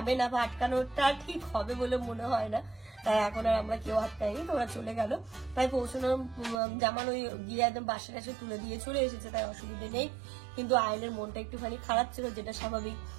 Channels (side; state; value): left; drops out; at 6.6 s